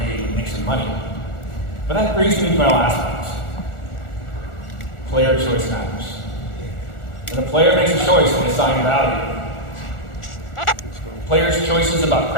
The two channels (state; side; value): late; right; 1.4 ms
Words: and make some money. But that brings me to my last point. Player choice matters. When a player makes a choice, they assign value. Players' choices about